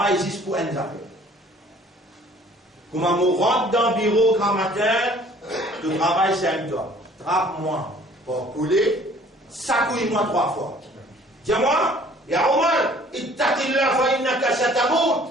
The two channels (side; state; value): both; normal; correlation 0.54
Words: existe pour un affaire. Comment on rentre dans le bureau grand matin, le travail c'est un toi. Trappe-moi pour couler, sacouille-moi 3 fois. Dis-moi, ya Omar, ittaqillah fa innaka